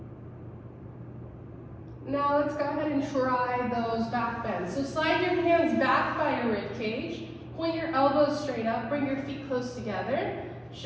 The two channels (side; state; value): both; identical; correlation 1.00